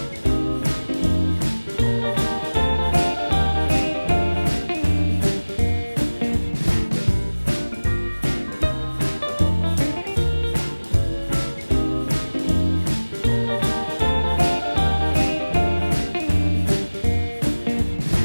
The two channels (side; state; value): both; inverted; correlation -1.00